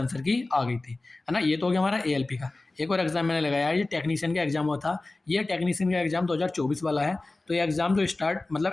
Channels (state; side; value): quieter; right; 3.1 dB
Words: की आ गई थी, है ना। ये तो हो गया हमारा एएलपी का। एक और एग्ज़ाम मैंने लगाया है, ये टेक्नीशियन का एग्ज़ाम हुआ था। ये टेक्नीशियन का एग्ज़ाम 2024 वाला है। तो ये एग्ज़ाम जो स्टार्ट